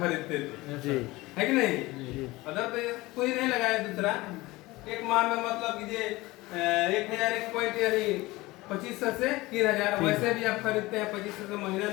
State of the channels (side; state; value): right; quieter; 20.4 dB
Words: थे, जी, है कि नहीं? जी, अदर तो कोई नहीं लगाया दूसरा। एक माह में मतलब कि 1001 पॉइंट यानी 2500 से 3000। वैसे भी आप खरीदते हैं 2500 से, महीना